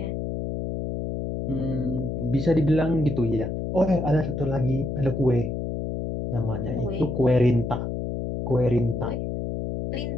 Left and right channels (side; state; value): left; noise; hum, 3 dB below the sound